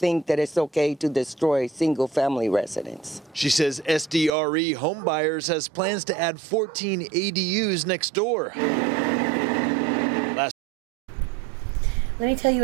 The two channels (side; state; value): left; drops out; at 4.3 s